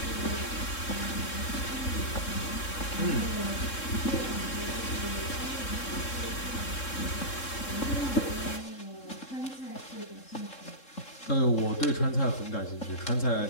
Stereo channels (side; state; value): right; late; 3.7 ms